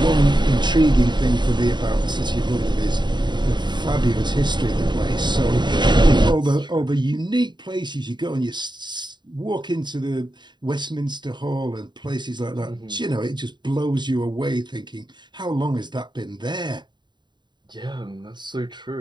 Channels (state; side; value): late; left; 0.22 ms